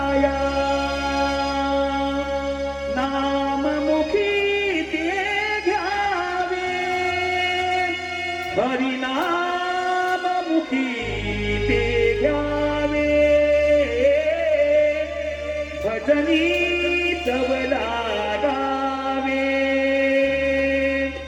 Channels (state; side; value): identical; both; correlation 1.00